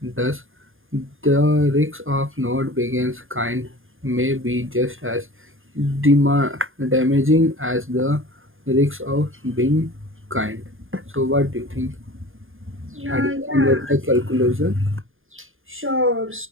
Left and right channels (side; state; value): left; late; 0.59 ms